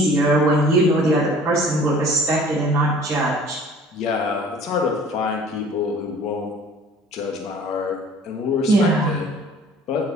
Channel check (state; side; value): normal; both; correlation 0.49